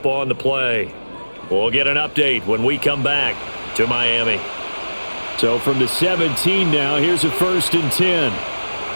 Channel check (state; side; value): inverted; both; correlation -1.00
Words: on the play. We'll get an update when we come back to Miami. So from the 17 now, here's a 1st and 10.